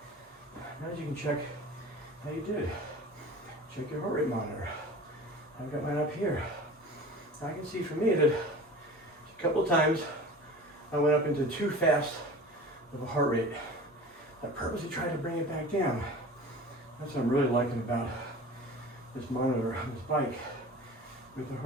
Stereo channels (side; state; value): both; normal; correlation 0.39